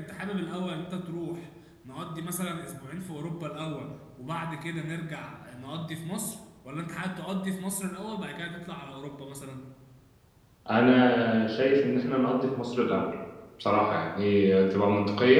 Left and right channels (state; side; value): identical; both; correlation 1.00